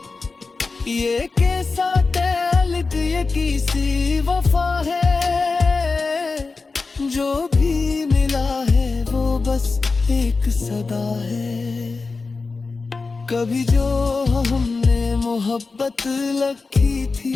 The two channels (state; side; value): quieter; right; 4.1 dB